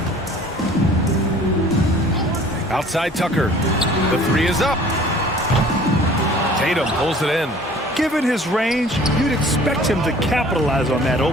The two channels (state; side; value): normal; both; correlation 0.50